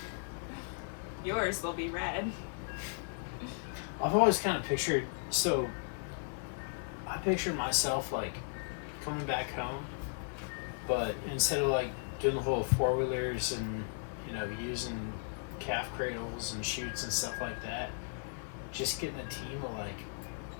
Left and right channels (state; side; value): silent; right; 54 dB below the other